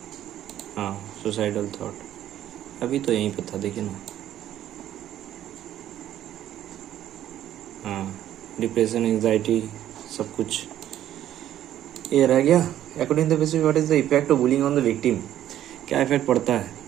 हाँ, सुसाइडल थॉट। अभी तो यहीं पे था, देखिए ना। हाँ, डिप्रेशन, एंजाइटी, सब कुछ ये रह गया। According to the basis, what is the effect of bullying on the victim? क्या इफेक्ट पड़ता है?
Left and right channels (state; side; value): quieter; left; 11.9 dB